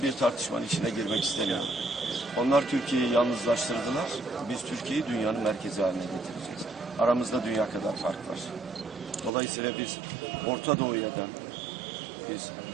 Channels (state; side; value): drops out; left; at 9.3 s